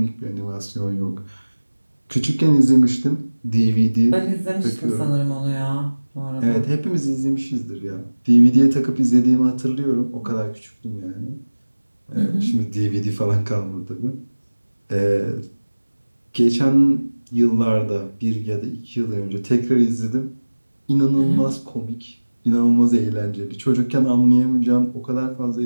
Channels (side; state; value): both; inverted; correlation -1.00